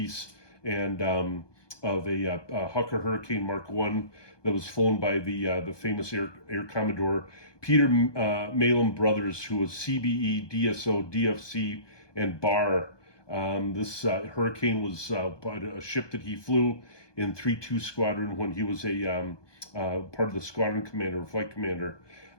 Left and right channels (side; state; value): right; late; 1.2 ms